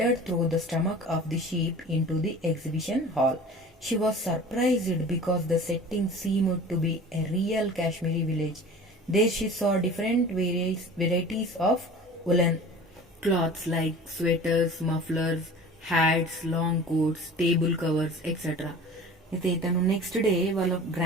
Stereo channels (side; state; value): both; normal; correlation 0.40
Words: through the stomach of the sheep into the exhibition hall. She was surprised because the setting seemed to be a real Kashmiri village. There she saw different varieties of woolen cloths like sweaters, mufflers, hats, long coats, table covers, etc. అయితే తను next day వాళ్ళ